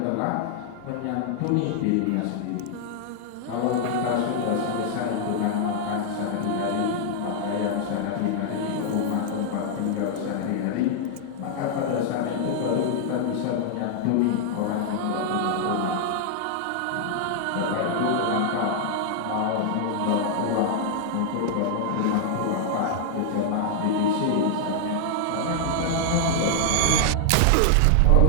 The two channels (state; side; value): different; both; correlation -0.01